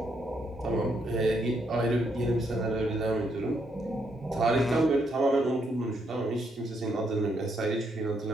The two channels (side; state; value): both; normal; correlation 0.75